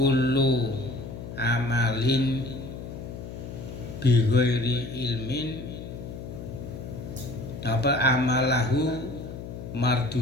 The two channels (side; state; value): left; noise; hum, 10 dB below the sound